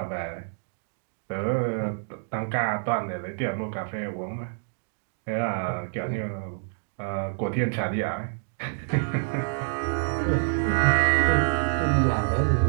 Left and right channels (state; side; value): silent; left; digital silence